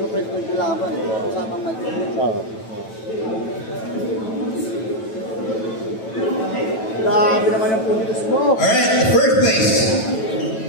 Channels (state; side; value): late; right; 9.1 ms